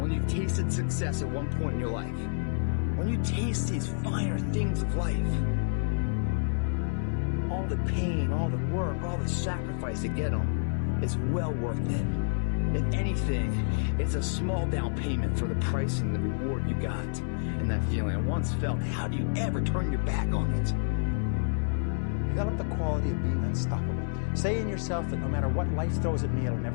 you've tasted success at one point in your life. When you taste these finer things of life, all the pain, all the work, all the sacrifice to get them is well worth it. If anything, it's a small down payment for the price and the reward you got. And that feeling, and once felt, how do you ever turn your back on it? Develop the quality of being unstoppable. Say in yourself that no matter what life throws at me, it'll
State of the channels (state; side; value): silent; right; 59 dB below the other